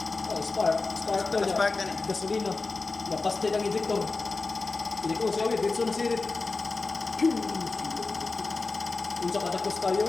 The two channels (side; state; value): right; quieter; 3.8 dB